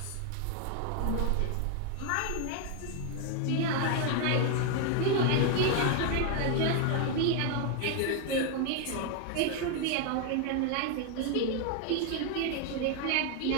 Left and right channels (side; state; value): both; different; correlation 0.00